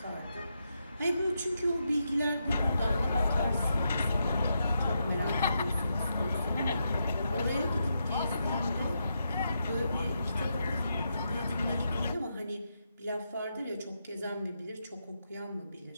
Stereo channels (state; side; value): inverted; both; correlation -0.83